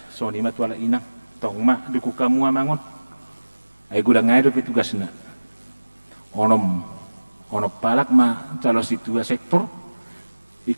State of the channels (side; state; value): both; inverted; correlation -1.00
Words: soni matu ala inang tong ma duku kamu amangon ay gudang ngay do tugas na onom palak ma calo situa sektor